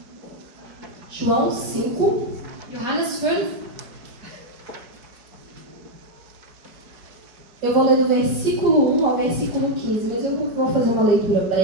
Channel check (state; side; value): late; left; 5.0 ms